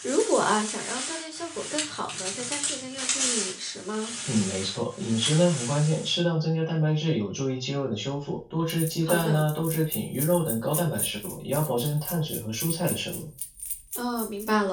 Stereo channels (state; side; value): identical; both; correlation 1.00